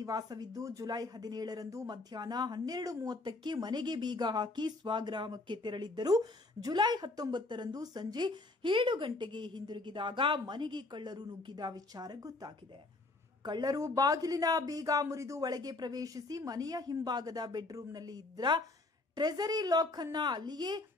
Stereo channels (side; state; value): right; quieter; 3.1 dB